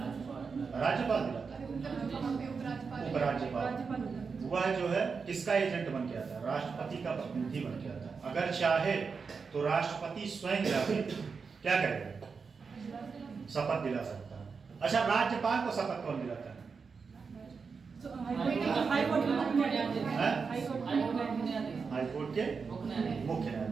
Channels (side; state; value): left; quieter; 5.2 dB